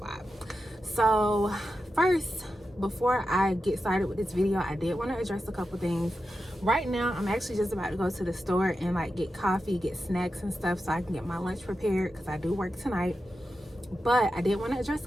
So first, before I get started with this video, I did want to address a couple things. Right now I'm actually just about to go to the store and like get coffee, get snacks and stuff so I can get my lunch prepared because I do work tonight. But I did want to address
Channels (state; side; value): normal; both; correlation 0.90